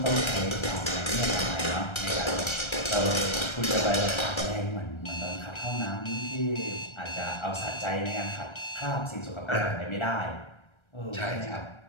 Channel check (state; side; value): late; right; 1.3 ms